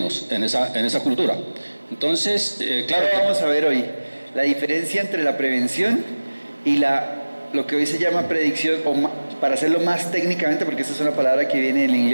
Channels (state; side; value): inverted; both; correlation -1.00